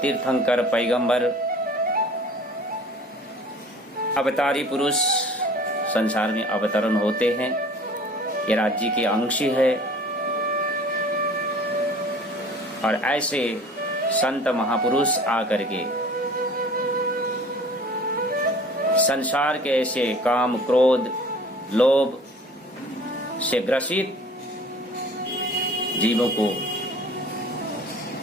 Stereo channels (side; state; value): both; normal; correlation 0.47